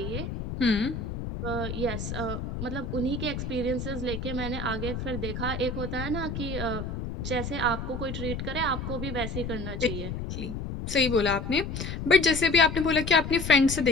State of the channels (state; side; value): noise; left; rumble, 5 dB below the sound